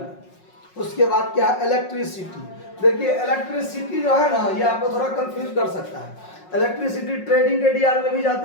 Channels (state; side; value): late; right; 5.5 ms